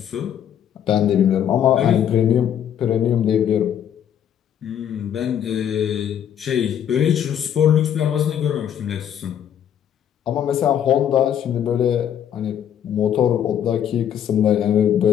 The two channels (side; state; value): right; quieter; 9.6 dB